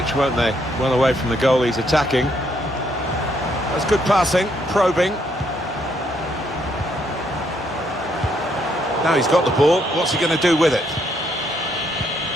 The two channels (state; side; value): normal; both; correlation 0.72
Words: won't they? Well away from the goal he's attacking. That's good passing, probing. Now he's got the ball, what's he going to do with it?